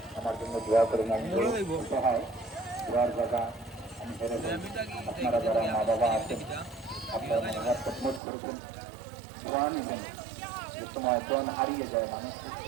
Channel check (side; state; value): left; drops out; at 8.2 s